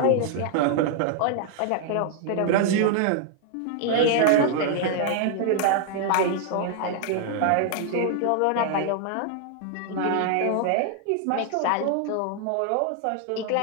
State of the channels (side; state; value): both; different; correlation 0.00